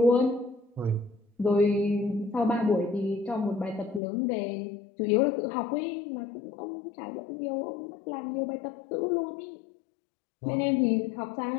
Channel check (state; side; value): drops out; right; at 4.0 s